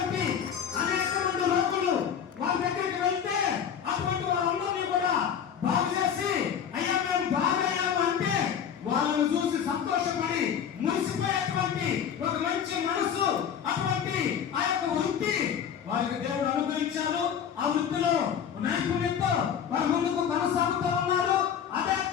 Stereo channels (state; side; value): quieter; right; 8.2 dB